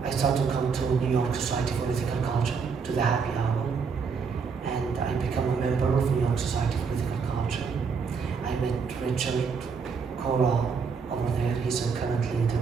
I started to come to New York Society for Ethical Culture, to the happy hour. And I become a member of New York Society for Ethical Culture. I met Richard Cora over there. He's a current leader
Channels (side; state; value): left; quieter; 5.6 dB